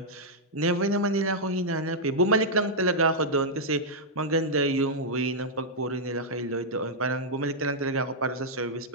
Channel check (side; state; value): both; normal; correlation -0.06